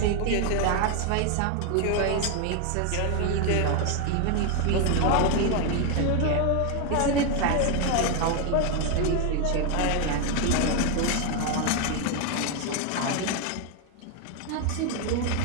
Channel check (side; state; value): both; different; correlation 0.01